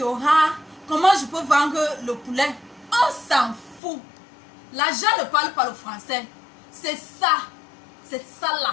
comment je peux vendre le poulet? On s'en fout. L'argent ne parle pas le français. C'est ça là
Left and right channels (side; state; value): right; drops out; at 3.8 s